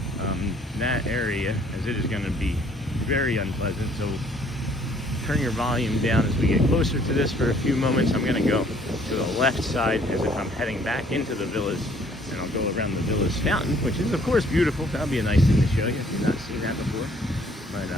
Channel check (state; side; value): normal; both; correlation 0.60